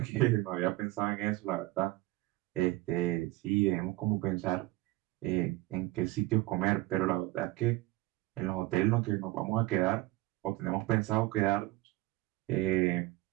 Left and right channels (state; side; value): quieter; left; 18.7 dB